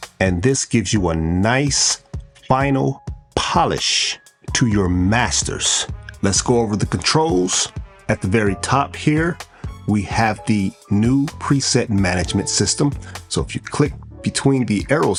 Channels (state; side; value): identical; both; correlation 1.00